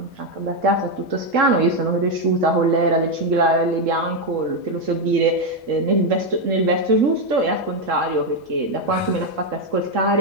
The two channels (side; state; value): both; normal; correlation 0.05